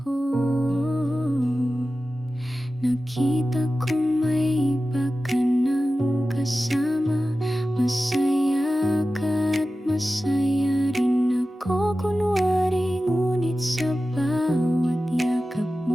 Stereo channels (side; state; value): both; normal; correlation 0.94